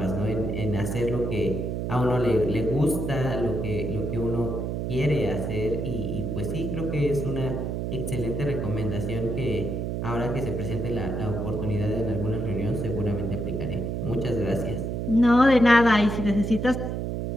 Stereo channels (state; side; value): noise; right; hum, 2 dB below the sound